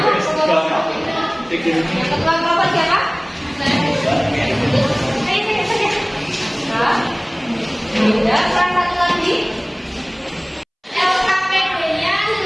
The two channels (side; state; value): both; identical; correlation 1.00